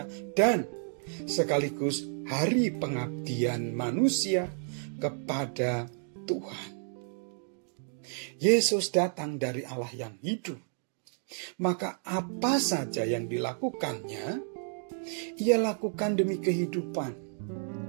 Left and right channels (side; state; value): left; silent; 57 dB below the other